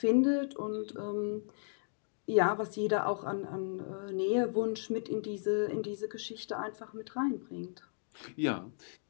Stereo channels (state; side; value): silent; right; digital silence